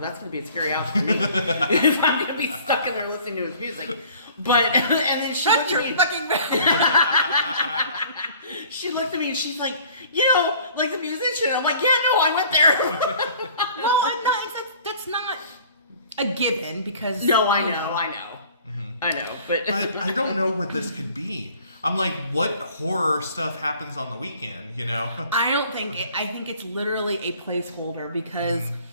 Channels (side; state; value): both; inverted; correlation -0.51